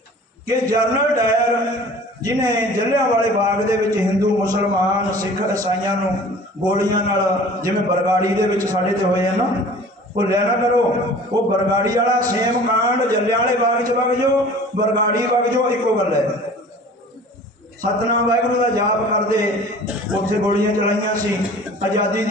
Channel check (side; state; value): both; normal; correlation 0.45